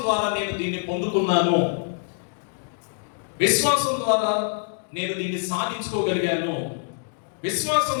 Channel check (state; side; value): silent; right; digital silence